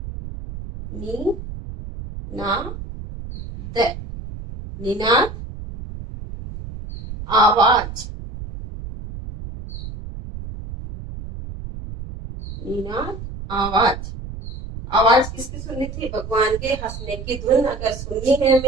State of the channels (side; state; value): right; noise; rumble, 10 dB below the sound